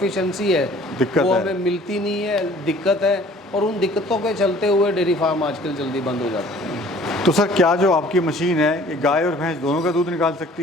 है वो हमें मिलती नहीं है, दिक्कत है। और उन दिक्कतों के चलते हुए डेयरी फार्म आजकल जल्दी बंद हो जाते हैं। तो सर क्या जो आपकी मशीन है ये गाय और भैंस दोनों का दूध निकाल सकती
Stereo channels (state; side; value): normal; both; correlation 0.53